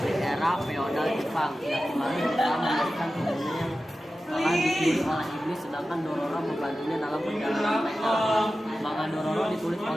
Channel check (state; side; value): normal; both; correlation 0.94